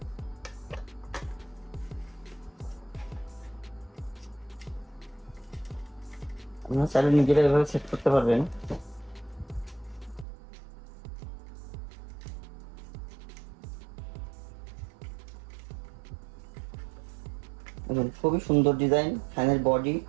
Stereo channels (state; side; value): drops out; left; at 10.2 s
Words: আপনারা চাইলে নিজেরা এভাবে সেট করতে পারবেন। দেখুন খুবই সুন্দর ডিজাইন, ফ্যানের বডি